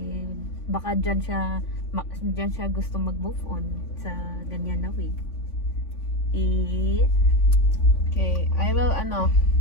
Baka dyan siya gusto mag-move on sa ganyan na way. Okay, I will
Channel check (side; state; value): right; late; 3.5 ms